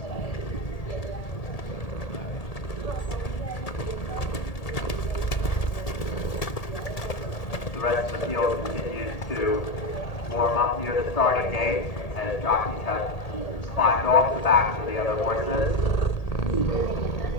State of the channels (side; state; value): right; late; 1.8 ms